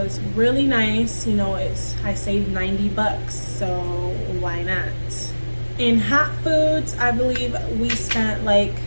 really nice. You know, I saved $90, so why not? In hot foods, I believe we spent like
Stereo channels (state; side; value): inverted; both; correlation -1.00